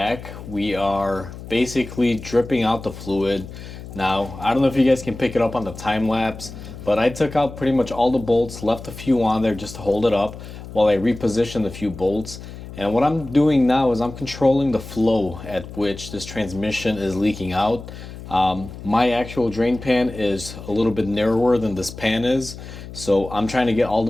We are basically dripping out the fluid. Now, I don't know if you guys can pick it up on the time lapse, but I took out pretty much all the bolts, left a few on there just to hold it up while I repositioned a few bolts. And what I'm doing now is I'm controlling the flow at which this transmission is leaking out. My actual drain pan is a little bit narrower than this pan is, so I'm trying to get all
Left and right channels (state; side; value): noise; left; hum, 13 dB below the sound